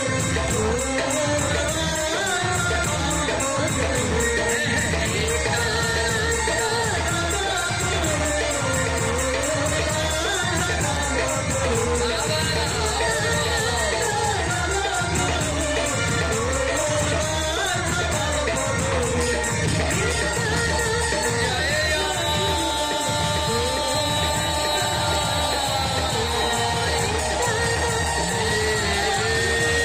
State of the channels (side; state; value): both; identical; correlation 1.00